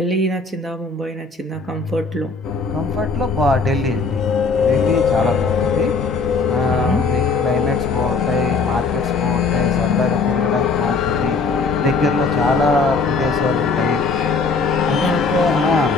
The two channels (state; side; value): quieter; right; 4.3 dB